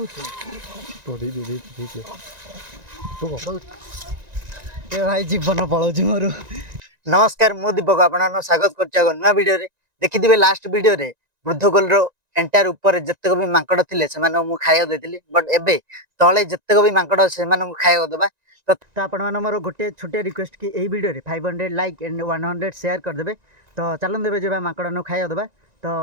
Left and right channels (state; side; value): late; left; 1.9 ms